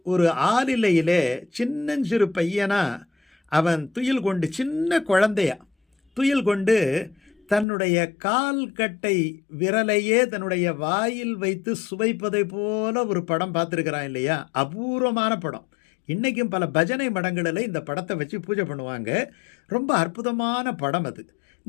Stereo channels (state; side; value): drops out; right; at 7.7 s